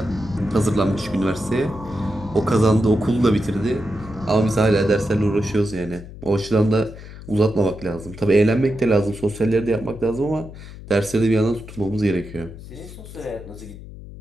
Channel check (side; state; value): left; noise; hum, 15 dB below the sound